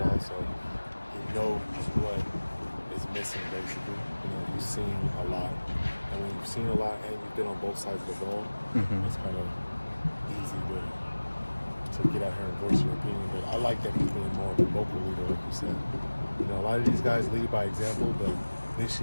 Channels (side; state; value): both; inverted; correlation -1.00